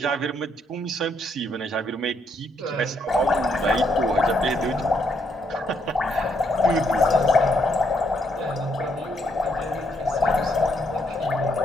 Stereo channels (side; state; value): both; normal; correlation 0.74